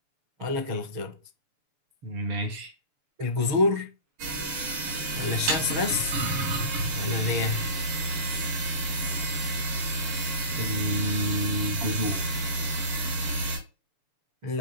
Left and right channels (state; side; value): late; left; 6.9 ms